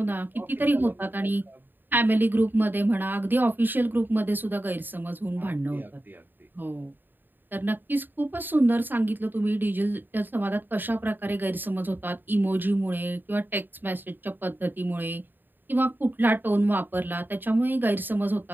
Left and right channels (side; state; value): left; late; 0.092 ms